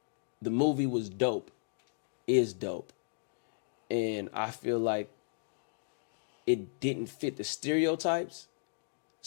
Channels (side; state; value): right; silent; digital silence